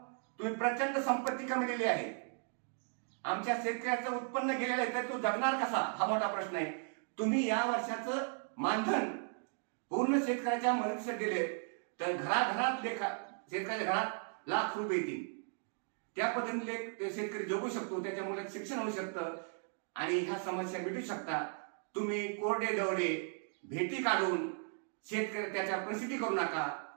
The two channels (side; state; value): left; silent; 54 dB below the other